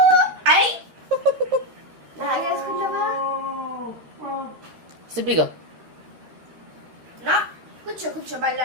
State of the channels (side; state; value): left; late; 13 ms